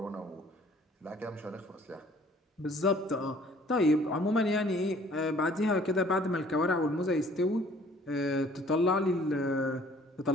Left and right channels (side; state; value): both; normal; correlation 0.56